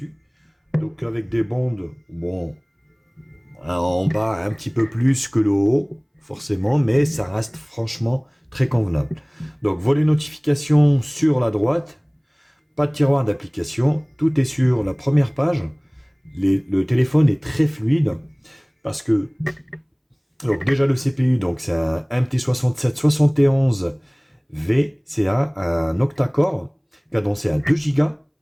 Donc avec des bandes, bon, en bas un petit peu plus que le haut, forcément, mais ça reste franchement très convenable. Donc volet notification sur la droite, pas de tiroir d'application, tout est sur la première page. Le téléphone est très fluide, parce que donc déjà le CPU, donc c'est un MT6771V, un octa-core, cadencé à 2 Go,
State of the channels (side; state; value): both; identical; correlation 1.00